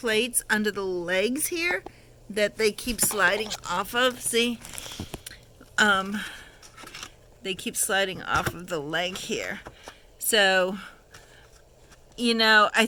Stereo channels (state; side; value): identical; both; correlation 1.00